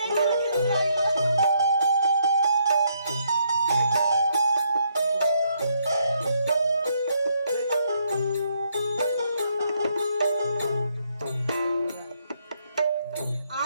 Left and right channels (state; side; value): inverted; both; correlation -0.73